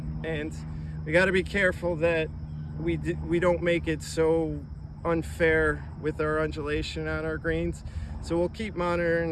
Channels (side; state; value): both; identical; correlation 1.00